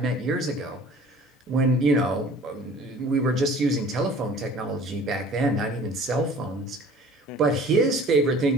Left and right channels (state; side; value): normal; both; correlation 0.47